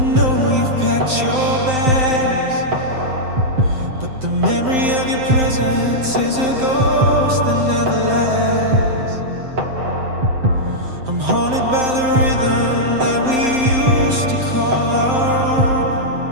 you've packed your bags, but the memory of your presence is a ghost that never lasts. I'm haunted by the rhythm that we used to call our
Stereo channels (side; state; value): left; late; 7.7 ms